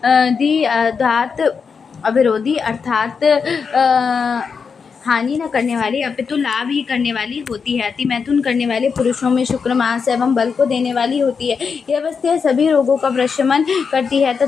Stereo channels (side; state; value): right; quieter; 5.7 dB